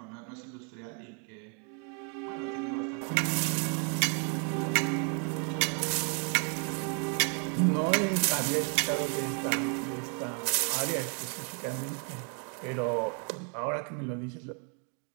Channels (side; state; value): left; quieter; 39.9 dB